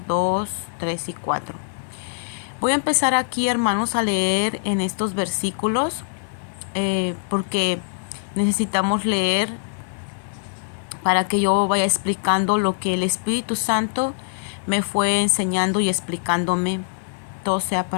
2, 3 y 4. Voy a empezar aquí, hermanos, a leer en estos versículos porque necesitamos leer para que yo vaya explicando lo que el Espíritu Santo me fue enseñando y explicándome. Todo sea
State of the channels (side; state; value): right; silent; 57 dB below the other